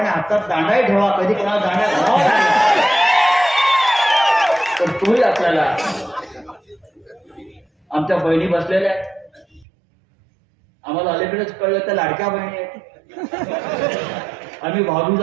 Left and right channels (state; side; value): drops out; left; at 9.7 s